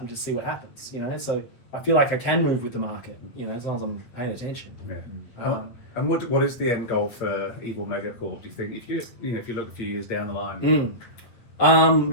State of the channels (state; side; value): late; right; 8.5 ms